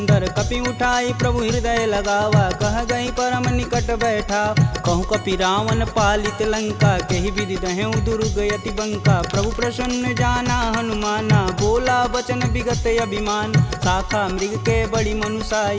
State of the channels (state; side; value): identical; both; correlation 1.00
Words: कपि उठाई प्रभु हृदय लगावा, कह गई परम निकट बैठा। कहूँ कपि रावण पालित लंका, केहि विधि दहें दुर्ग यति बंका। प्रभु प्रसन्न जाना हनुमाना, बोला बचन विगत अभिमान। शाखा मृग के बड़ी मनुसाई,